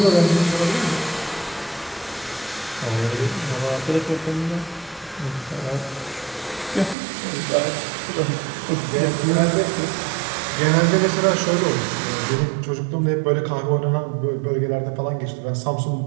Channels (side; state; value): left; drops out; at 7.0 s